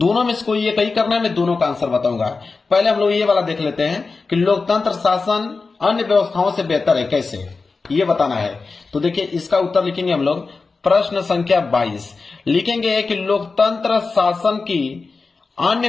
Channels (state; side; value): quieter; right; 4.2 dB